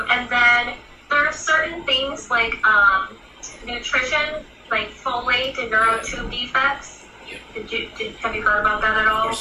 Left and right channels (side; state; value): both; identical; correlation 1.00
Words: And then there are certain things like nutrition, like folate and neurotube defects. Have you heard about that at all?